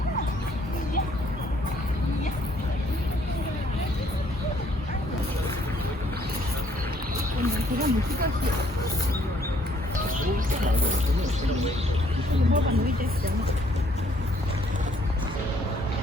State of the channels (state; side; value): normal; both; correlation 0.65